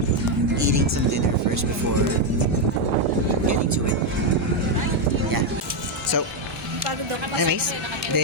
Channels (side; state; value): both; normal; correlation 0.03